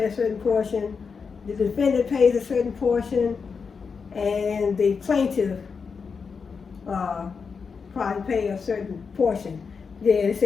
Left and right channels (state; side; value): quieter; right; 5.5 dB